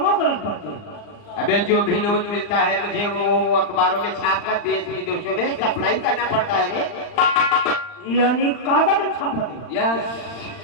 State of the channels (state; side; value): late; right; 39 ms